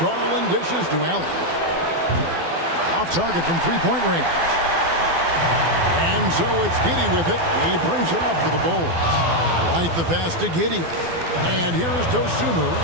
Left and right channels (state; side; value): late; left; 12 ms